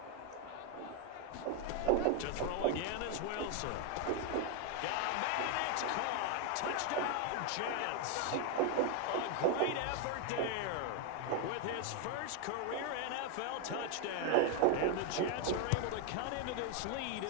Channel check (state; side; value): different; both; correlation 0.01